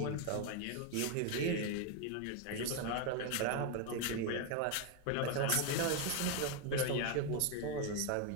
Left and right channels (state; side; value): different; both; correlation 0.01